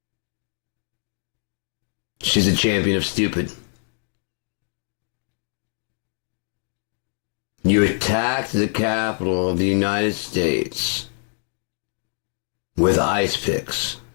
She's a champion of stupid. You attacked the Capitol of the United States with ice picks.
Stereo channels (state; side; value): silent; right; digital silence